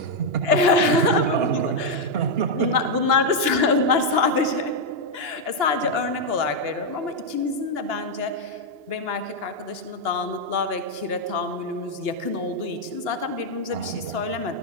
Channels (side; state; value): left; late; 2.9 ms